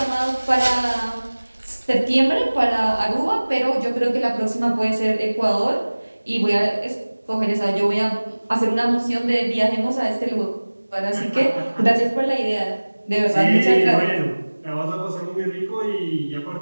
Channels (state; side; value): inverted; both; correlation -1.00